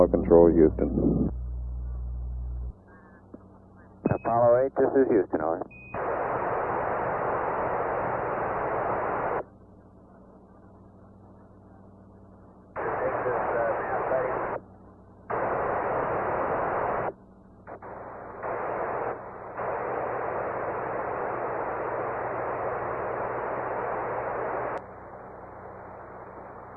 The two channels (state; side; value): identical; both; correlation 1.00